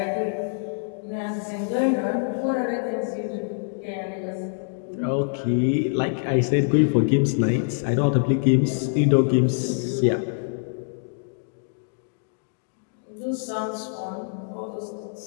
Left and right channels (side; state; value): right; silent; digital silence